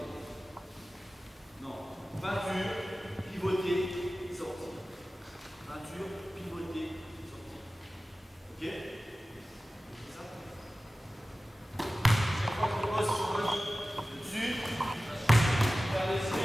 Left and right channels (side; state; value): both; normal; correlation 0.96